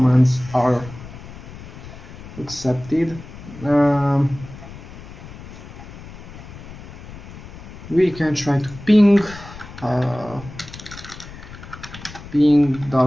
are accepted. We can try to ping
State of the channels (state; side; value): noise; left; rumble, 15 dB below the sound